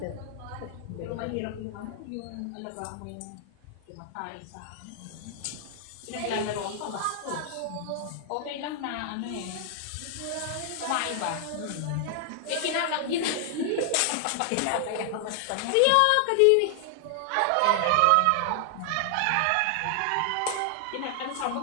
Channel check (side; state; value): both; different; correlation 0.00